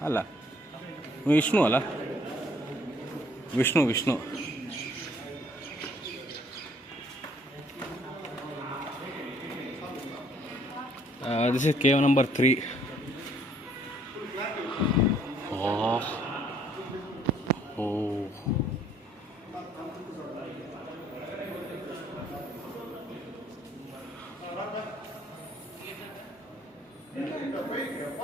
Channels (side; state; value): both; normal; correlation 0.62